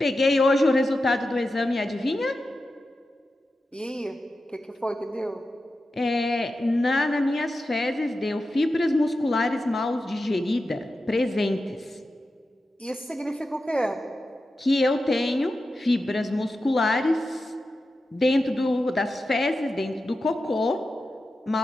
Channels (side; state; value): both; normal; correlation 0.91